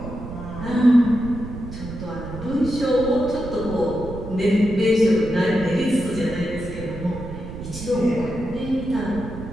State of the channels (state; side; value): noise; right; rumble, 10 dB below the sound